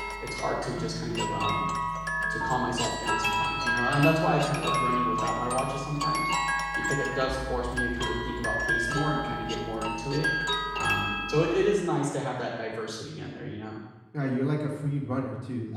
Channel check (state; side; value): identical; both; correlation 1.00